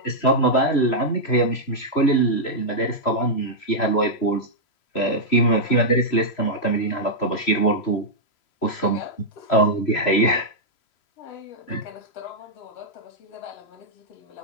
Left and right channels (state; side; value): late; right; 3.0 ms